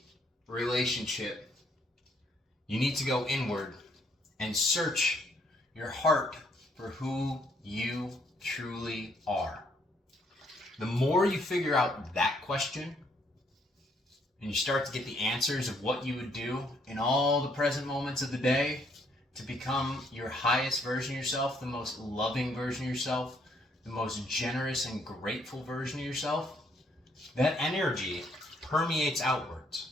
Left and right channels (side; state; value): both; normal; correlation 0.69